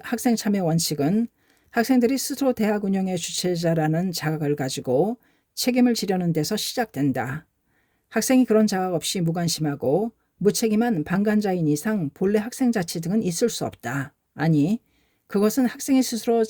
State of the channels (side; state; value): both; identical; correlation 1.00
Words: 참여 원칙은 학생들이 스스로 대학 운영의 주체자라는 자각을 가지고 책임을 지려는 데서 시작된다. 학생이 그런 자각 없이 무관심하고 무책임한 방관자인 이상 본래 학생자치 등은 있을 수 없다. 아니, 그것은 학생이 스스로